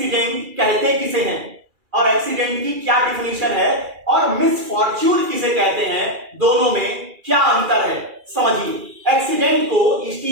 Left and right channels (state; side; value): late; left; 2.4 ms